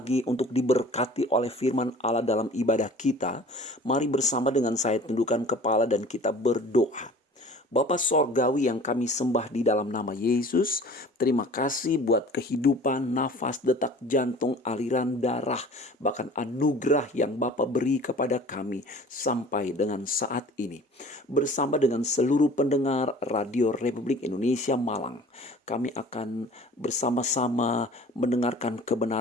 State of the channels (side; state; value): both; normal; correlation 0.45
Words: untuk diberkati oleh firman Allah dalam ibadah kita, mari bersama dengan saya tundukkan kepala dan kita berdoa. Bapa Sorgawi yang kami sembah di dalam nama Yesus, terima kasih buat kehidupan, nafas, detak jantung, aliran darah, bahkan anugerah yang Bapa beri kepada kami sampai dengan saat ini. Bersama dengan seluruh pendengar Radio Republik Indonesia Malang, kami akan bersama-sama mendengarkan